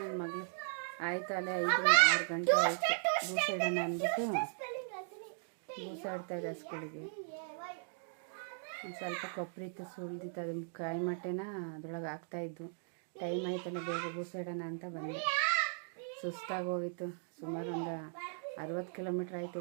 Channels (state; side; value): silent; left; digital silence